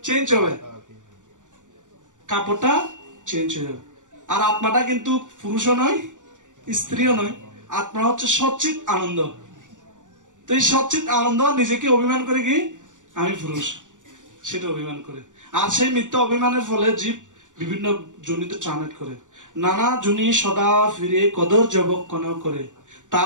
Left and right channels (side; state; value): left; late; 0.87 ms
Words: চেঞ্জ হবে, কাপড়টা চেঞ্জ হয়ে যাবে। আর আত্মাটা কিন্তু পুরুষও নয়, স্ত্রীও নয়, আত্মা হচ্ছে সচ্চিত আনন্দ। তো এই সচ্চিত আনন্দ নিজেকে অভিমান করে কি আমি পুরুষ, সেটা অভিমান করে। আর সেই মিথ্যা অভিমানের ফলে জীব বিভিন্ন জনিতে ট্রান্সলেট করে, নানা জনি সদা ফিরে কদর জবক্ষণ করে,